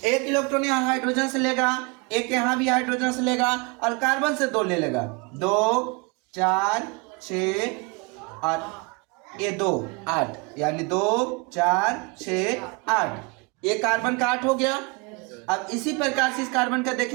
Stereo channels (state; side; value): quieter; left; 29.7 dB